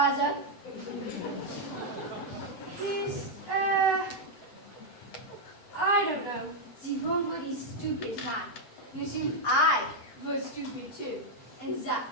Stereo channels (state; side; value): late; right; 7.9 ms